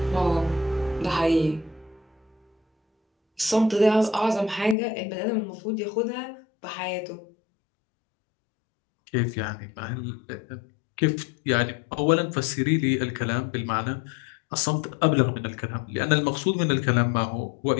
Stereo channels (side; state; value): right; drops out; at 4.8 s